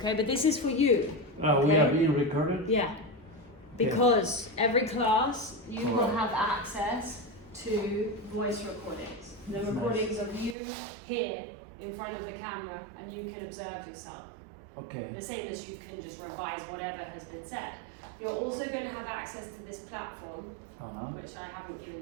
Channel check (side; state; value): left; drops out; at 10.6 s